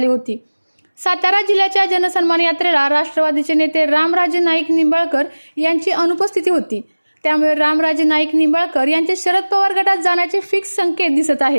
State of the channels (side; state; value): both; inverted; correlation -1.00